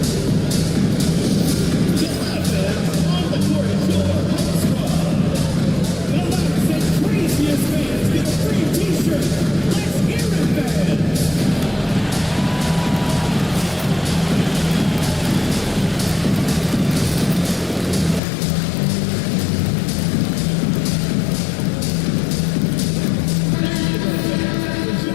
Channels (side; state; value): right; drops out; at 18.2 s